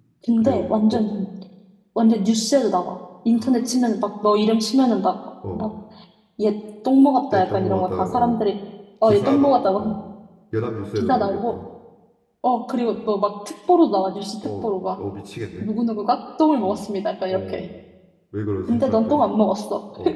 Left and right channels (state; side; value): identical; both; correlation 1.00